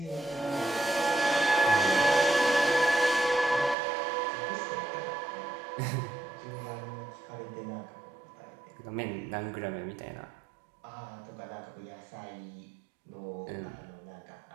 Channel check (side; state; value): left; drops out; at 3.8 s